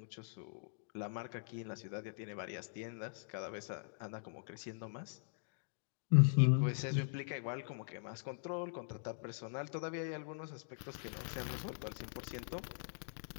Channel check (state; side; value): silent; right; digital silence